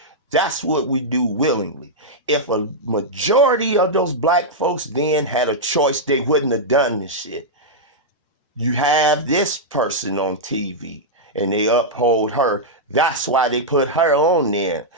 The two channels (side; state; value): both; normal; correlation -0.07